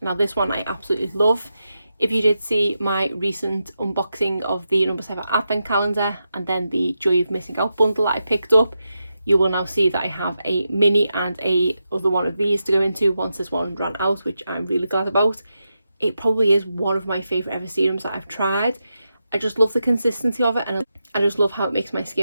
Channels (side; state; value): both; inverted; correlation -0.88